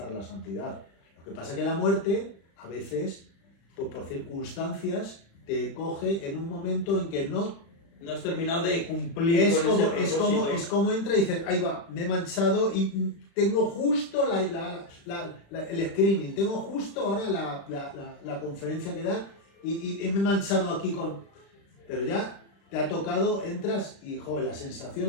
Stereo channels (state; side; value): late; right; 36 ms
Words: la santidad. Lo que pasa es que la muerte, a veces, pues por circunstancias, te coge en un momento en que no has terminado de cumplir es con ese propósito. es como entra y dices, ahí va, me he manchado y tengo justo el screening, tengo justo ahora la conferencia que da y me he manchado aquí con... Pero ya te ha tocado, entras y, joder, la sensación,